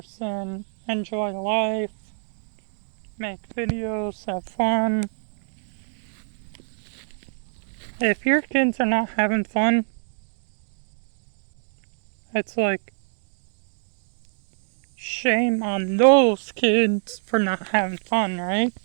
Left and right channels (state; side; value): silent; left; 61 dB below the other